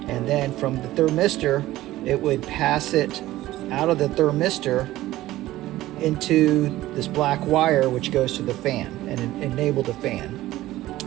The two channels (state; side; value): quieter; left; 15.9 dB